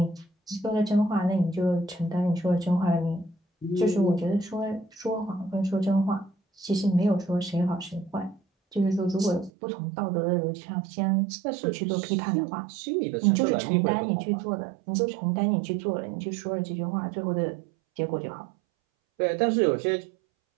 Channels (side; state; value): left; drops out; at 9.5 s